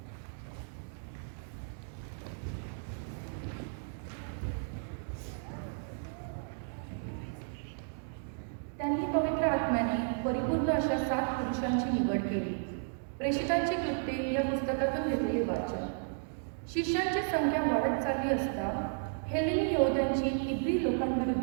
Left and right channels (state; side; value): silent; left; digital silence